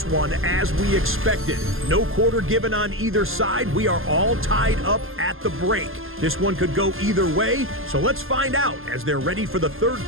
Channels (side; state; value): left; late; 0.60 ms